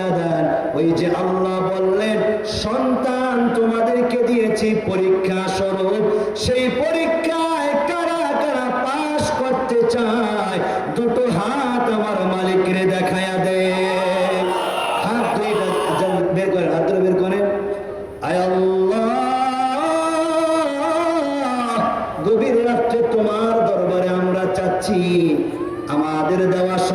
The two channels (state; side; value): identical; both; correlation 1.00